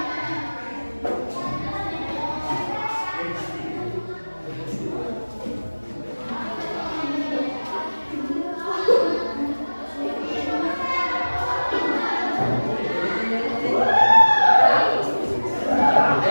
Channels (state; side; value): inverted; both; correlation -1.00